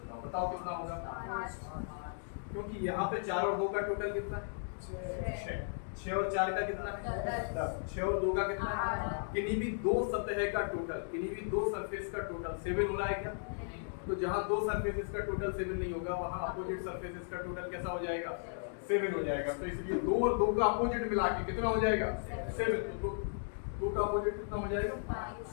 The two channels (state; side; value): silent; right; digital silence